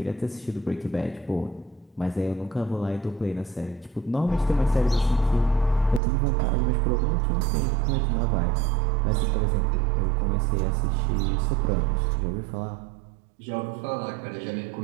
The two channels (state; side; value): drops out; left; at 6.0 s